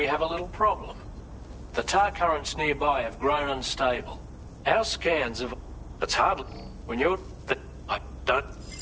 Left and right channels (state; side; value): identical; both; correlation 1.00